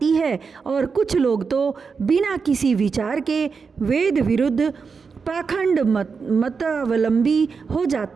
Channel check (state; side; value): quieter; left; 5.3 dB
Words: है और कुछ लोग तो बिना किसी विचार के वेद विरुद्ध पाखंड मतावलंबी हो